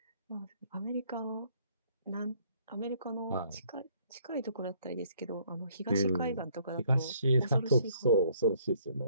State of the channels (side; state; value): both; inverted; correlation -0.64